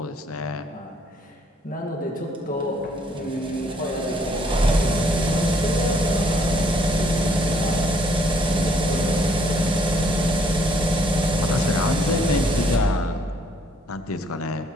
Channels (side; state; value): both; normal; correlation 0.66